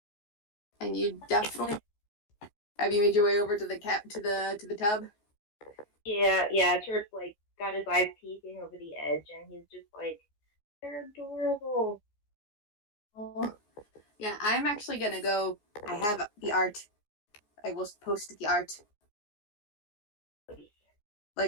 And you definitely have you made your way over to the tub? Yeah. Turp's like got his eyes peeking over the edge, and he's just like, they're adorable. Oh. Yeah, I'm actually gonna go. I have the art. I will post the art,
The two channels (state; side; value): late; right; 14 ms